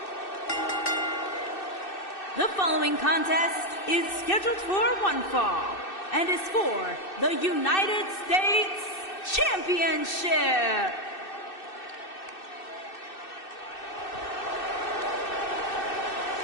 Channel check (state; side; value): late; right; 2.6 ms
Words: The following contest is scheduled for one fall and is for the United States Championship.